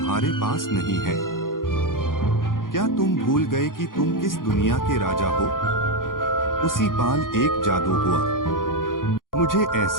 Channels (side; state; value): right; late; 0.90 ms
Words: पास नहीं है? क्या तुम भूल गए कि तुम किस दुनिया के राजा हो? उसी पाल एक जादू हुआ। मुझे